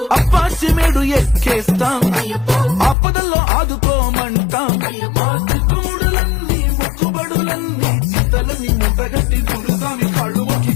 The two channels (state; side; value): drops out; right; at 3.0 s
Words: అప్పాచిమేడు ఎక్కేస్తాం ఆపదల్లో ఆదుకోమంటాం మా చిక్కుముడులన్నీ మొక్కుబడులన్నీ చింతలన్నీ ముట్టగట్టి గురుస్వామి కాళ్ళు మొక్కి